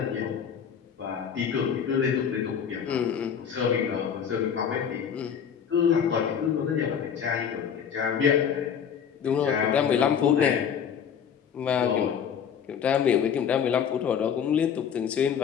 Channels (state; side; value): quieter; right; 7.8 dB